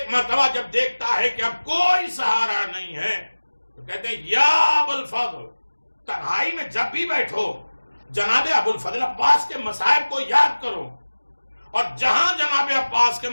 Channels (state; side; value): inverted; both; correlation -1.00